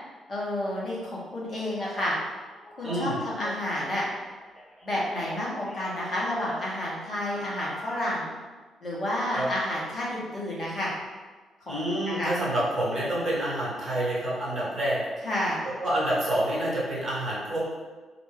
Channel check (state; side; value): normal; both; correlation 0.74